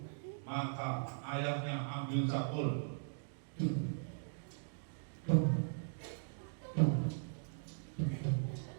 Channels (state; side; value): silent; left; digital silence